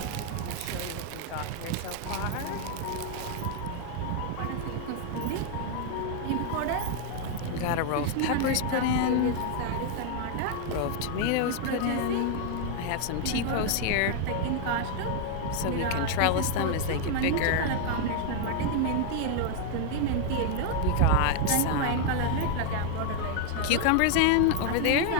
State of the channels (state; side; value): different; both; correlation 0.00